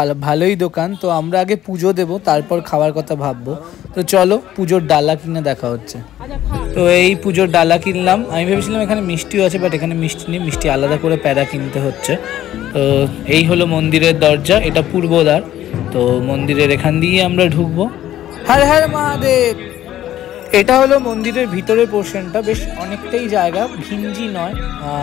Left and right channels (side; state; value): right; quieter; 12.7 dB